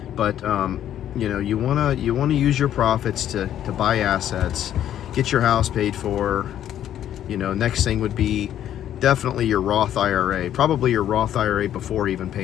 But you want to use your profits to buy assets, get your house paid for. Next thing would be definitely your Roth IRA, probably your Roth IRA before even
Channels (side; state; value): right; quieter; 11.0 dB